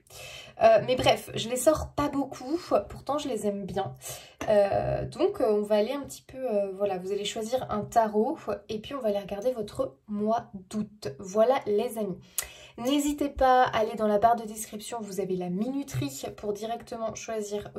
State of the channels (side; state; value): both; identical; correlation 1.00